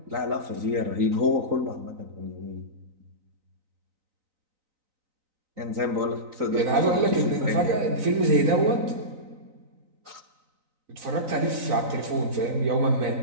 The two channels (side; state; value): left; late; 4.0 ms